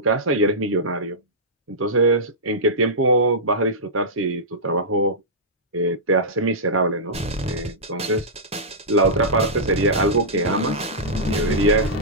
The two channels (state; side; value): normal; both; correlation -0.14